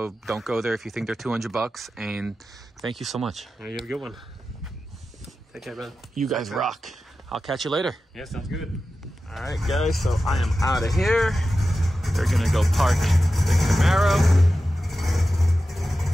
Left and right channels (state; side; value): normal; both; correlation 0.93